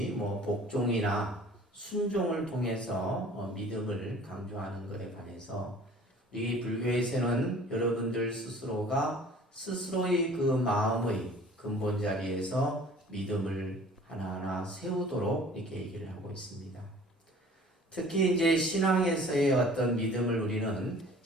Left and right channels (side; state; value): both; normal; correlation 0.48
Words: 복종이나 순종을 통해서 믿음을 강조하는 것에 반해서 우리 불교에서는 여러분들 스스로가 스스로의 그 마음의 근본 자리에서 믿음을 하나하나 세우도록 이렇게 얘기를 하고 있습니다. 특히 이제 신앙에서의 어떤 믿음을 우리는